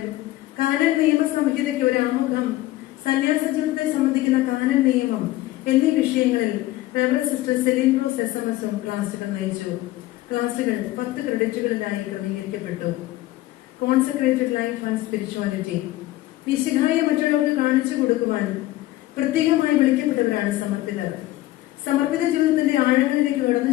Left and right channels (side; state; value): right; quieter; 16.6 dB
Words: കാനൻ നിയമ സംഹിതയ്ക്ക് ഒരു ആമുഖം, സന്യാസ ജീവിതത്തെ സംബന്ധിക്കുന്ന കാനൻ നിയമം എന്നീ വിഷയങ്ങളിൽ സിസ്റ്റർ സെലിൻഡ്രോസ് SMS ക്ലാസുകൾ നയിച്ചു. ക്ലാസുകൾ 10 ക്രെഡിറ്റുകളിലായി ക്രമീകരിക്കപ്പെട്ടു. കോൺസെക്രേറ്റഡ് ലൈഫ് ആൻഡ് സ്പിരിച്വാലിറ്റി, വിശുദ്ധായ മറ്റുള്ളവർക്ക് കാണിച്ചു കൊടുക്കുവാൻ പ്രത്യേകമായി വിളിക്കപ്പെട്ടവരാണ് സമർപ്പിതർ. സമർപ്പിത ജീവിതത്തിന്റെ ആഴങ്ങളിലേക്ക്